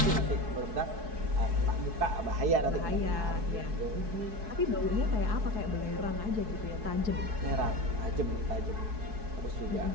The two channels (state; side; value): late; left; 4.7 ms